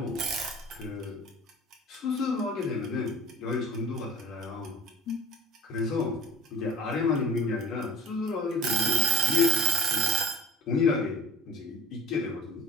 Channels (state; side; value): normal; both; correlation 0.44